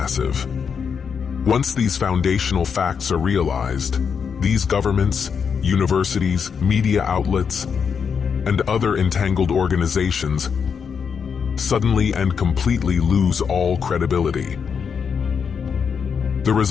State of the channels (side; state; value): right; quieter; 6.5 dB